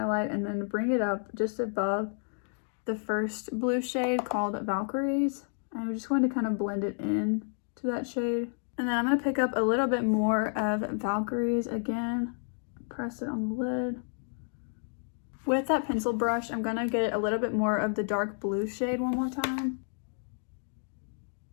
and then bring it up just above the first blue shade called Valkyries. And I'm just going to kind of blend it in to that shade. And then I'm going to pick up a little bit more of Valkyries again. Press it on the lid. With that pencil brush, I'm gonna get a little bit more of the dark blue shade one more time.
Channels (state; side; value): silent; right; 57 dB below the other